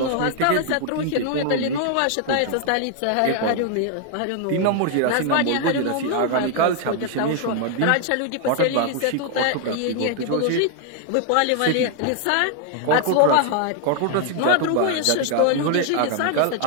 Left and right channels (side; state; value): both; different; correlation 0.00